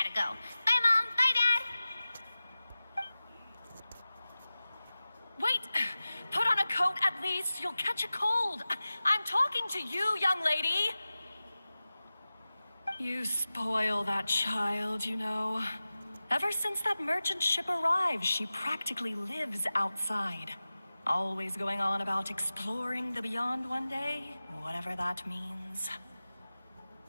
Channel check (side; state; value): both; inverted; correlation -0.96